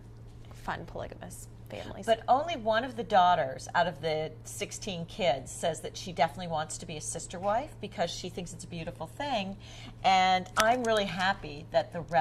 fun polygamous families. But only one of the daughters out of the 16 kids says that she definitely wants to be a sister wife because she thinks it's a beautiful thing. And I'm really happy that the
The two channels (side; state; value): both; identical; correlation 1.00